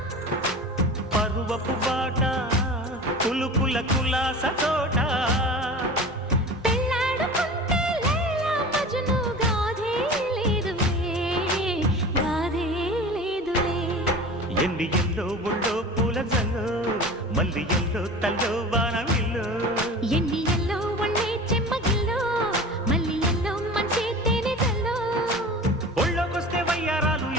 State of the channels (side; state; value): both; normal; correlation 0.36